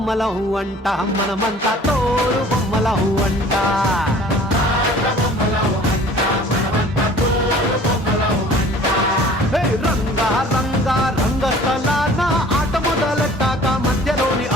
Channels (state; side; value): normal; both; correlation 0.49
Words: అంట మనమంతా తోలు బొమ్మలం అంట రంగా రంగా రంగస్థలాన ఆట మొదలెట్టాక మధ్యలోని